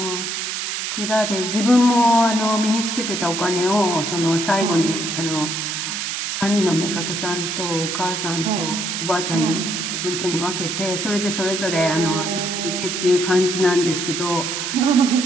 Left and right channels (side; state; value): right; noise; hiss, 3 dB below the sound